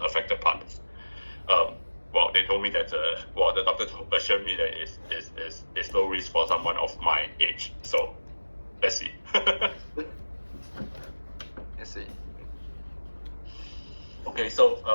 affected parts. Well, they told me that the doctor assured me that it's low risk for someone of my age. So let's see. Let's see. Okay, so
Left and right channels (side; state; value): both; inverted; correlation -1.00